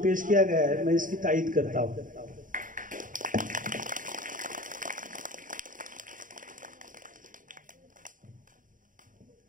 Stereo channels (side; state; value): left; late; 0.39 ms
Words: पेश किया गया है, मैं इसकी तायीद करता हूँ।